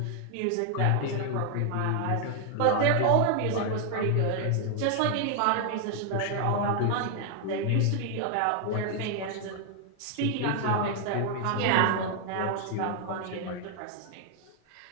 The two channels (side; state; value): both; different; correlation 0.00